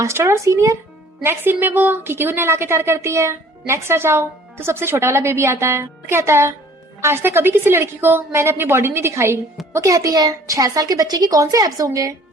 और सीनियर। नेक्स्ट सीन में वो कीकी को नहला के तैयार करती है। नेक्स्ट आ जाओ तो सबसे छोटा वाला बेबी आता है, कहता है आज तक कभी किसी लड़की को मैंने अपनी बॉडी नहीं दिखाई। वो कहती है 6 साल के बच्चे की कौन से एब्स होंगे,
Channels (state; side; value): normal; both; correlation 0.53